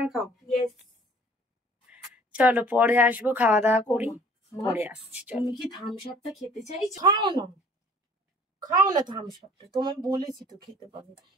খাও। চলো পরে আসবো, খাওয়া দাওয়া করি, পরে আসছি। তুমি কি থামস আপটা খেতে চাইছো? খাও না, খাও না থামস আপটা, তোমার বলেছি তো খেতে পাবে।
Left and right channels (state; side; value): normal; both; correlation 0.52